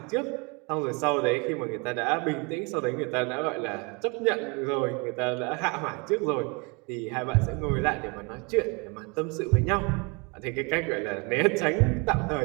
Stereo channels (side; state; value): left; quieter; 30.0 dB